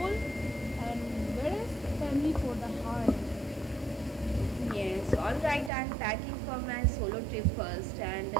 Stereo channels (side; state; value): left; drops out; at 5.7 s